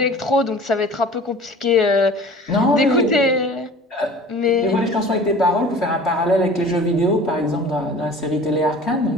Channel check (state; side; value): normal; both; correlation 0.43